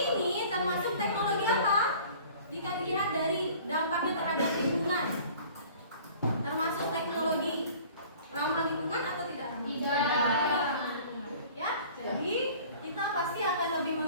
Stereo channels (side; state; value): both; inverted; correlation -0.48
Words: termasuk teknologi apa? Jika dilihat dari dampaknya terhadap lingkungan, termasuk teknologi ramah lingkungan atau tidak ramah? Tidak. Ya, jadi kita pasti akan lebih